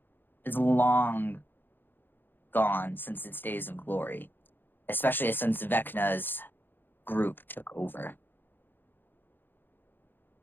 It's long gone since its days of glory, especially since Vecna's group took over.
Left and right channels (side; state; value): right; late; 0.096 ms